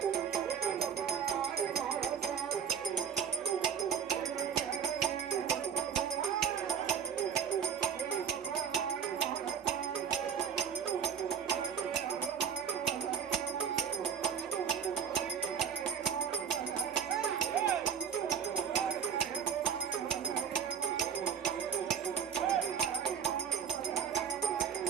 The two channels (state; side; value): quieter; left; 7.6 dB